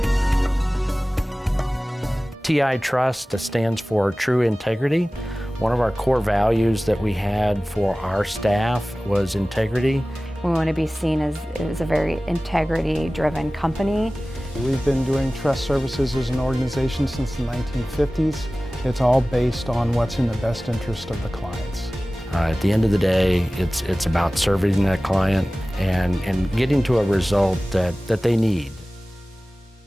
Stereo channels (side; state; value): both; normal; correlation 0.97